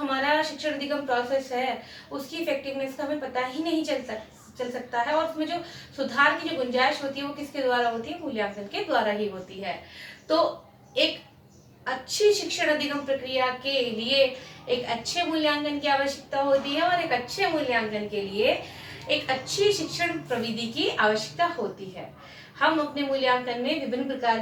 शिक्षण अधिगम प्रोसेस है उसकी इफेक्टिवनेस का हमें पता ही नहीं चल सकता है, और उसमें जो सुधार की जो गुंजाइश होती है वो किसके द्वारा होती है? मूल्यांकन के द्वारा ही होती है। तो एक अच्छी शिक्षण अधिगम प्रक्रिया के लिए एक अच्छे मूल्यांकन की आवश्यकता होती है, और एक अच्छे मूल्यांकन के लिए एक अच्छी शिक्षण प्रविधि की आवश्यकता होती है। हम अपने मूल्यांकन में विभिन्न प्रकार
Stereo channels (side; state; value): both; identical; correlation 1.00